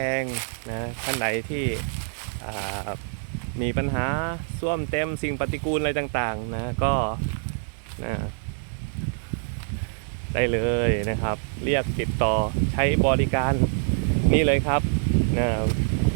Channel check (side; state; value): left; silent; 61 dB below the other